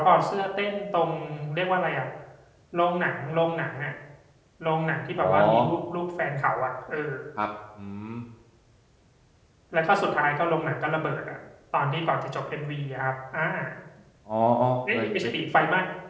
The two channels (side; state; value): both; identical; correlation 1.00